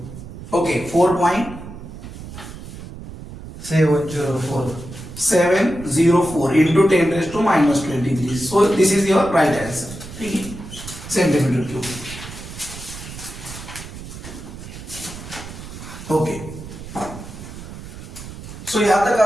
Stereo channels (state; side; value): noise; right; rumble, 12 dB below the sound